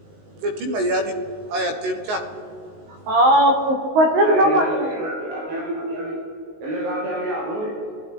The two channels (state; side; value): late; left; 19 ms